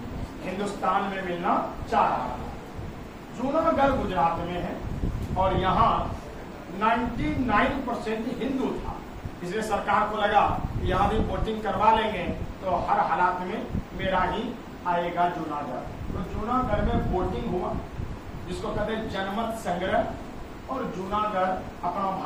हिंदुस्तान में मिलना चाह रहा था। जूनागढ़ गुजरात में है और यहाँ 99% हिंदू था। इसलिए सरकार को लगा कि यहाँ भी वोटिंग करवा लेंगे तो हर हालात में मेरा ही आएगा जूनागढ़। तो जूनागढ़ में वोटिंग हुआ जिसको कहते हैं जनमत संग्रह और जूनागढ़ अपना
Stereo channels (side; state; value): both; identical; correlation 1.00